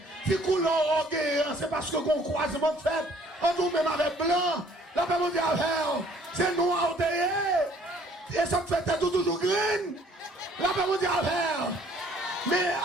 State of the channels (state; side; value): normal; both; correlation 0.59